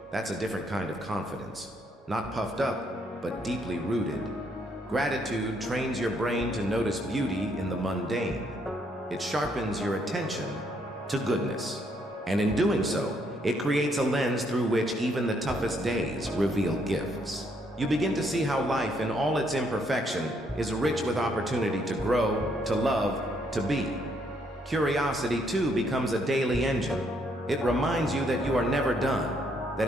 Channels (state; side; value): normal; both; correlation 0.71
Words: That's a different kind of confidence. Not puffed up, but deeply rooted. Gratitude trains your brain to notice beauty in the mundane. It sharpens your attention to goodness. And in doing so, it creates a lens through which even the toughest days reveal gifts. You begin to see how life in all its imperfection is rich with opportunity to grow, to love, to be. Curiosity, too, becomes a daily engine. It reminds you that you are never done, that